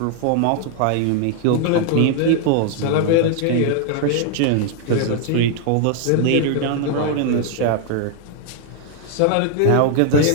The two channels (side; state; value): both; different; correlation 0.00